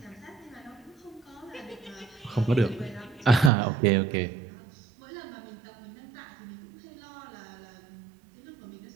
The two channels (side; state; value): left; drops out; at 3.5 s